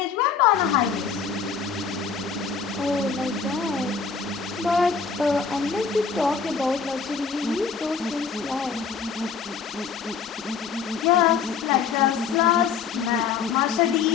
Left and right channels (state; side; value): quieter; right; 6.0 dB